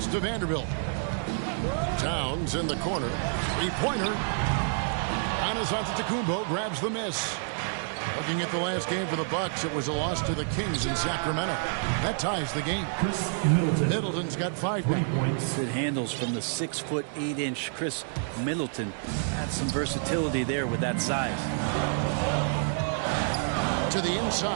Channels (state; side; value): silent; left; digital silence